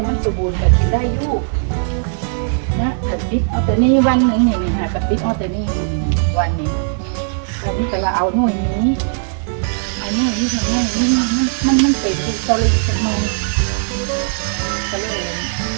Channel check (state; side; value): silent; left; digital silence